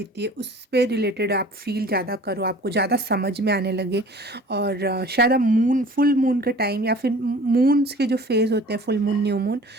है उस पे रिलेटेड आप फील ज़्यादा करो, आपको ज़्यादा समझ में आने लगे। और शायद आप फुल मून के टाइम या फिर मून्स के जो फेज़ होते हैं, फुल मून, न्यू मून,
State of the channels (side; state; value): both; normal; correlation 0.46